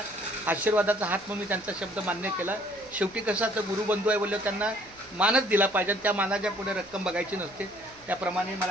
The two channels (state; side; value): noise; right; hum, 26 dB below the sound